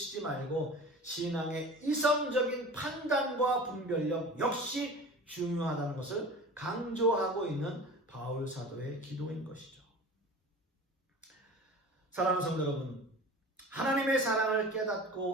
말고 신앙의 이성적인 판단과 분별력 역시 중요하다는 것을 강조하고 있는 바울 사도의 기도인 것이죠. 사랑하는 성도 여러분, 하나님의 사랑을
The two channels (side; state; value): both; normal; correlation 0.38